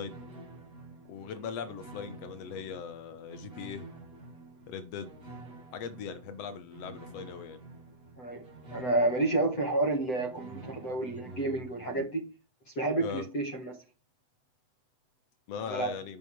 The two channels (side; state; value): right; late; 7.9 ms